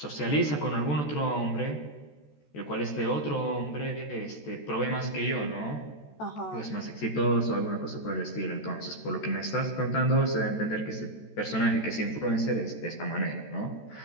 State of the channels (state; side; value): late; right; 14 ms